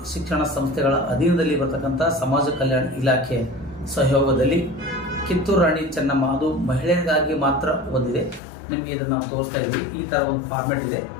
ಶಿಕ್ಷಣ ಸಂಸ್ಥೆಗಳ ಅಧೀನದಲ್ಲಿ ಬರ್ತಕ್ಕಂಥ ಸಮಾಜ ಕಲ್ಯಾಣ ಇಲಾಖೆ ಸಹಯೋಗದಲ್ಲಿ ಕಿತ್ತೂರು ರಾಣಿ ಚೆನ್ನಮ್ಮ, ಅದು ಮಹಿಳೆಯರಿಗಾಗಿ ಮಾತ್ರ ಒಂದಿದೆ. ನಿಮಗೆ ಇದನ್ನು ನಾವು ತೋರಿಸ್ತಾ ಇದ್ದೀವಿ. ಈ ಥರ ಒಂದು ಫಾರ್ಮೆಟ್ ಇದೆ.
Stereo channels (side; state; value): right; drops out; at 8.4 s